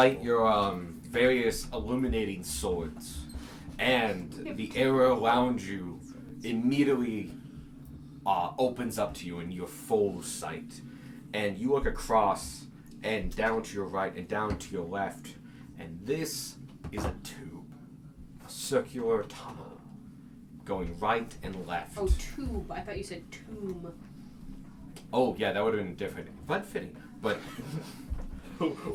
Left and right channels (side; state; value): both; identical; correlation 1.00